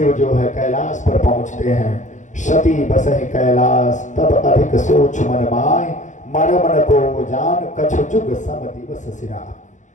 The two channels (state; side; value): late; right; 0.35 ms